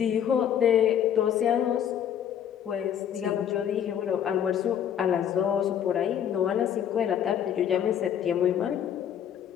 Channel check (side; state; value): right; quieter; 9.4 dB